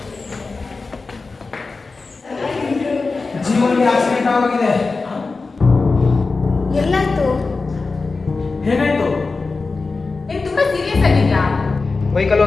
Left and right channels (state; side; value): quieter; right; 4.0 dB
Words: ಜೀವನಿಗೆ ಆಕ್ಸಿಡೆಂಟ್ ಆಗಿದೆ. ಎಲ್ಲಾಯ್ತು? ಏನಾಯ್ತು? ನೀನು ತುಂಬಾ ಸೀರಿಯಸ್ ಆಗಿದ್ಯಾ? ಬೈಕಲ್ಲಿ